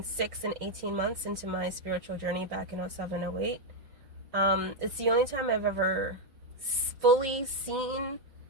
6 and 18 months into my spiritual journey back in 07, 08. It's the only time I've ever fully seen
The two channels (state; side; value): late; left; 5.5 ms